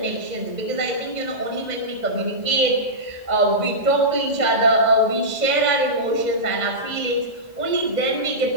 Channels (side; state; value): left; late; 2.0 ms